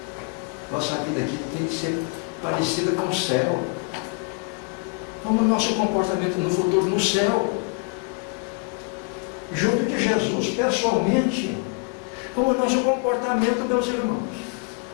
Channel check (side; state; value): right; quieter; 35.5 dB